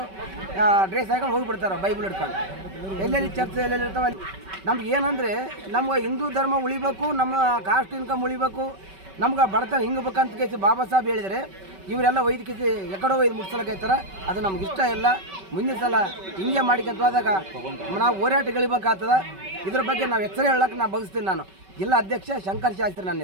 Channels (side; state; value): left; late; 5.2 ms